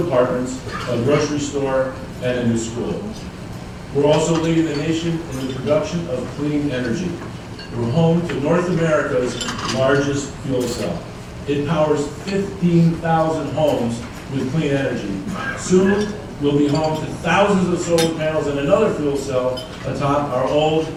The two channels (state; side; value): identical; both; correlation 1.00